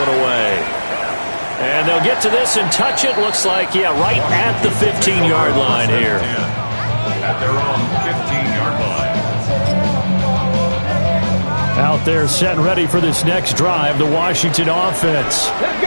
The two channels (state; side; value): inverted; both; correlation -1.00